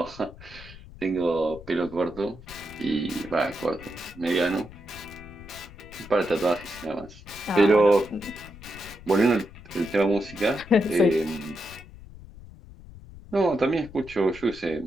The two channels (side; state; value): left; noise; rumble, 18 dB below the sound